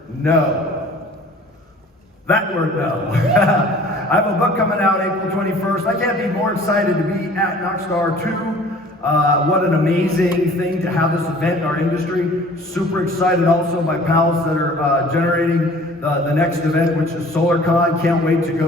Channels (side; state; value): both; normal; correlation 0.49